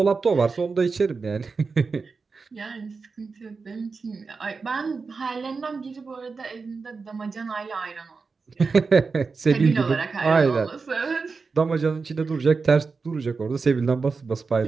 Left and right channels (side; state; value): left; quieter; 4.6 dB